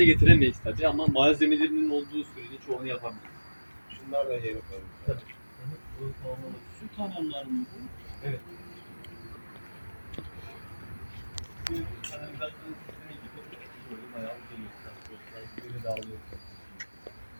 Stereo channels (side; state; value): both; inverted; correlation -1.00